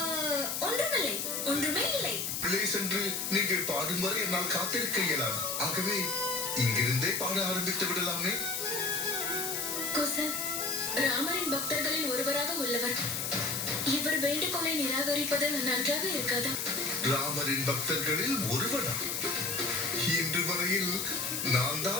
ஒன்றுமில்லை, ஒன்றுமே இல்லை. உள்ளே சென்று நீங்கள் பாடும் வரை என்னால் காத்திருக்க இயலாது. ஆகவே இங்கிருந்தே பாட ஆரம்பித்து விடலாமே. குசன், ராமரின் பக்தர்களில் ஒருவராக உள்ளவர். இவர் வேண்டுகோளை நிராகரிப்பது நன்றாக இருக்காதா? ராமரின் பக்தர்களில் ஒருவனா? இன்று வரையில் நான்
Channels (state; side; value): noise; left; hiss, 2 dB below the sound